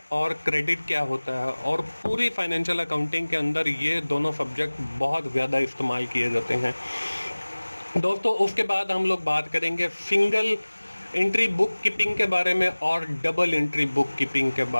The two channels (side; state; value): both; inverted; correlation -1.00